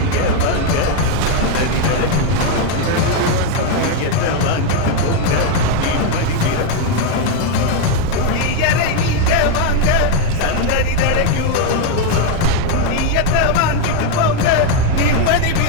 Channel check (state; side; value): different; both; correlation 0.01